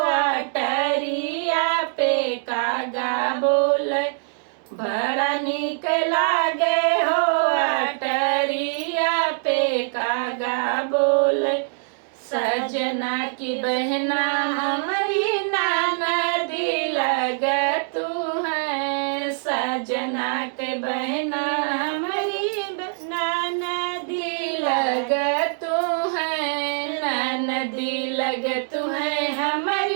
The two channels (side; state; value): left; silent; digital silence